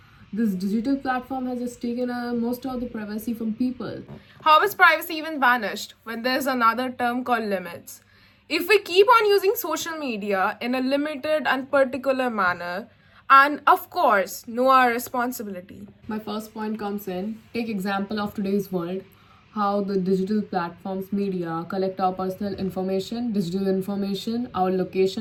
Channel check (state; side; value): identical; both; correlation 1.00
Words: This digital platform has just taken most of the privacy from people. How is privacy even vanished when there's another term called limits? If we keep on using social media in a limited and particular manner, and of course, know our responsibility. My first point comes in take example of today's world, how the digital platforms media collect our personal information, digital information, our